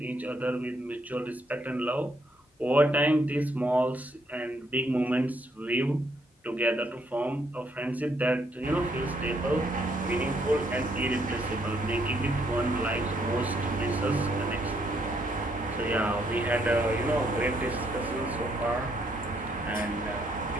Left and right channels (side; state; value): both; normal; correlation 0.72